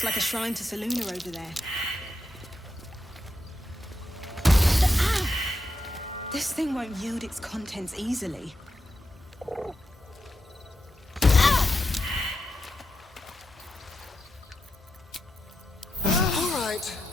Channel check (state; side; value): normal; both; correlation 0.85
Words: like a shrine to Saluna over there. This thing won't yield its contents easily. All right,